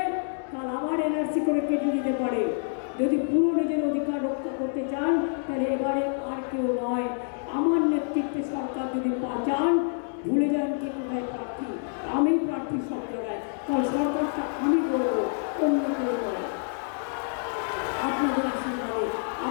কাল আবার এনআরসি করে কেটে দিতে পারে। যদি পুরো নিজের অধিকার রক্ষা করতে চান, তাহলে এবারে আর কেউ নয়, আমার নেতৃত্বে সরকার যদি চান, ভুলে যান কে কোথায় প্রার্থী। আমি প্রার্থী সব জায়গায়, কারণ সরকারটা আমি করবো, অন্য কেউ করে। আপনাদের আশীর্বাদে,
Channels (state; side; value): silent; right; 60 dB below the other